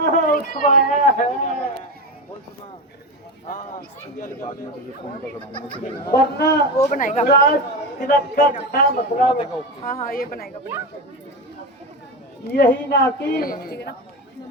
उठवाया है, वरना वो बनाएगा। राज तिलक का क्या मतलब? हाँ हाँ ये बनाएगा यही ना कि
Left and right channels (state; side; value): normal; both; correlation 0.20